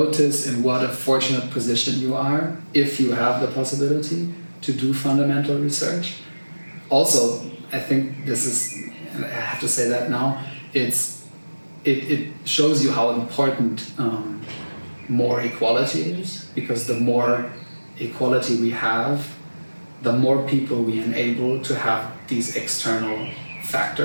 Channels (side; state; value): both; inverted; correlation -1.00